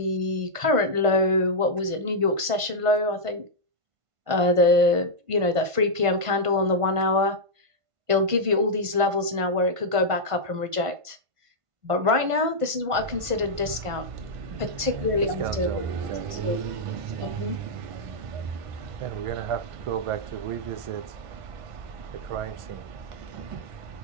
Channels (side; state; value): left; late; 1.5 ms